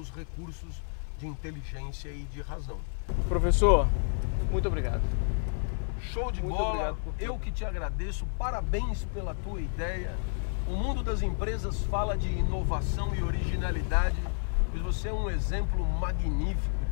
recursos de inteligência e de razão. Professor, muito obrigado. Show de bola, eu que te agradeço, parabéns pela tua ideia. O mundo das empresas fala de inovação e originalidade, pois você é um exemplo magnífico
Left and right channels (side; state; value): right; silent; 57 dB below the other